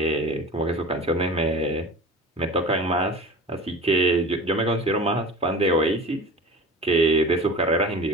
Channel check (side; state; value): both; normal; correlation 0.37